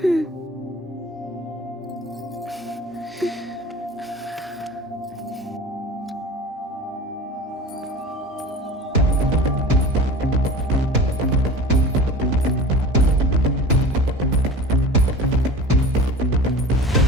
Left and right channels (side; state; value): both; normal; correlation 0.37